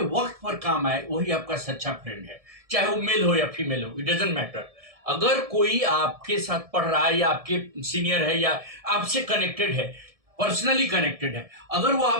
वक्त पर काम आए वही आपका सच्चा friend है, चाहे वो मेल हो या फीमेल हो, इट डजंट मैटर. अगर कोई आपके साथ पढ़ रहा है या आपके सीनियर है या आपसे कनेक्टेड है, पर्सनली कनेक्टेड है, अगर वो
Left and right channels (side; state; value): left; late; 1.7 ms